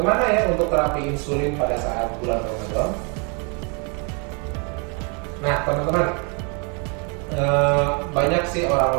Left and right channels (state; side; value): quieter; left; 35.6 dB